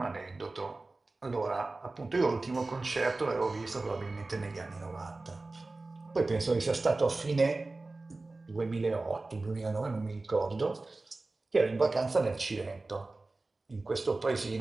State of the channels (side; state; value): left; quieter; 3.3 dB